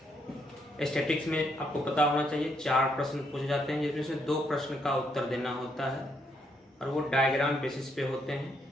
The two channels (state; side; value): normal; both; correlation 0.75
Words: स्टैटिक्स में आपको पता होना चाहिए 4 प्रश्न पूछे जाते हैं, जिसमें से 2 प्रश्न का उत्तर देना होता है और वो डायग्राम बेसिस पे होते हैं।